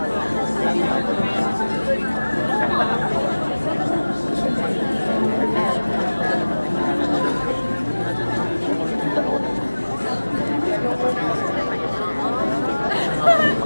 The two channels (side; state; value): both; inverted; correlation -1.00